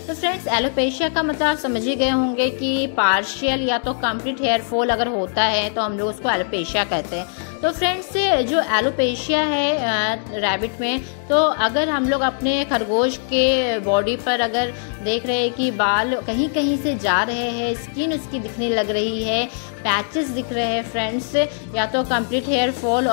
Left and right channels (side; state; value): right; silent; digital silence